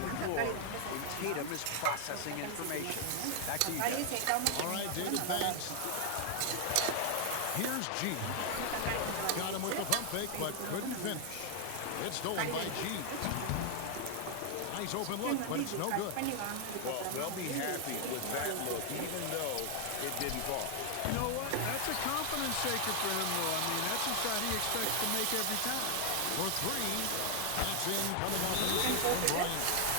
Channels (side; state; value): both; different; correlation 0.00